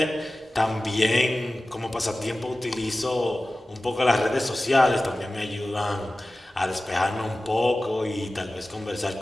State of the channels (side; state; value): both; normal; correlation 0.96